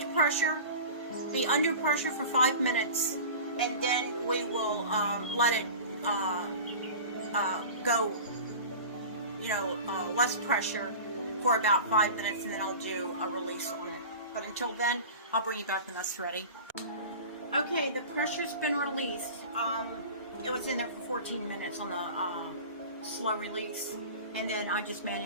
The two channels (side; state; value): both; inverted; correlation -0.36